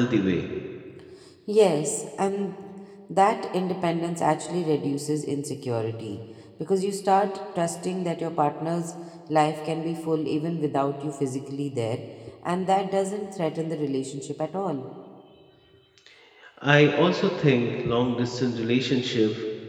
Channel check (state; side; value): identical; both; correlation 1.00